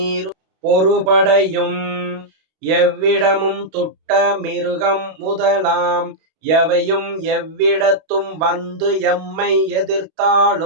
பொறுபடையும் எவ்விடமும் துட்ட மிருகம் முதலாம் எவையும் எவ்விடத்தும் வந்து எம்மை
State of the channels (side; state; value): left; late; 32 ms